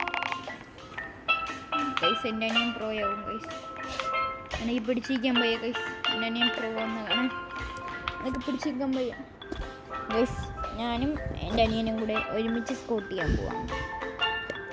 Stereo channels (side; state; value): both; identical; correlation 1.00